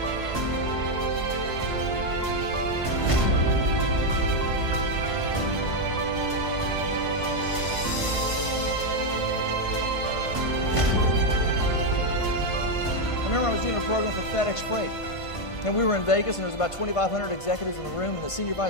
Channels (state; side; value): late; right; 1.5 ms